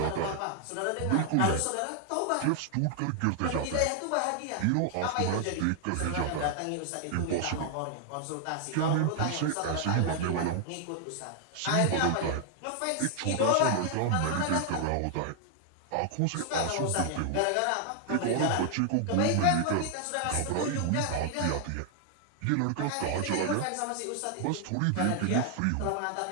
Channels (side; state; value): both; different; correlation 0.00